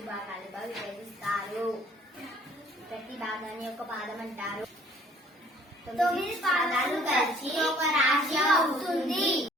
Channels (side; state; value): both; normal; correlation 0.56